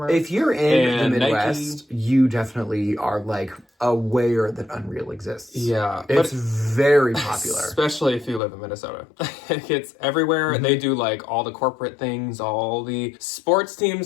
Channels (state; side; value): drops out; right; at 8.4 s